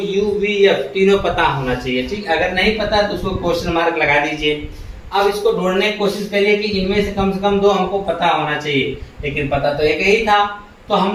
v f तीनों पता होना चाहिए, ठीक। अगर नहीं पता तो उसको क्वेश्चन मार्क लगा दीजिए। अब इसको ढूंढने की कोशिश करिए कि इनमें से कम 2 हमको पता होना चाहिए, लेकिन पता तो एक ही था। तो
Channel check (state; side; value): identical; both; correlation 1.00